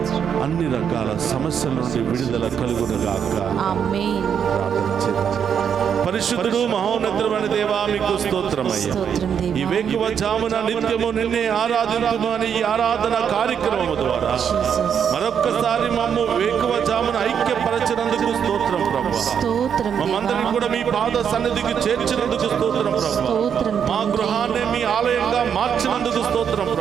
అన్ని రకాల సమస్యల నుండి విడుదల కలుగునుగాక. ప్రార్థన చేద్దాం. పరిశుద్ధుడు మహోన్నతుడైన దేవా, మీకు స్తోత్రమయ్యా. ఈ వేకువ జామున నిత్యము నిన్నే ఆరాధించుము అని ఈ ఆరాధన కార్యక్రమం ద్వారా మరొక్కసారి మమ్ము వేకువ జామున ఐక్యపరచినందుకు స్తోత్రం ప్రభువా. మమ్మందరినీ కూడా మీ పాద సన్నిధికి చేర్చినందుకు స్తోత్రం ప్రభువా. మా గృహాన్ని మీ ఆలయంగా మార్చినందుకు స్తోత్రం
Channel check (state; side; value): quieter; left; 7.8 dB